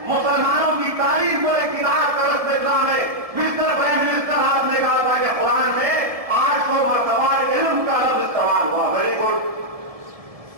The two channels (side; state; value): left; late; 1.7 ms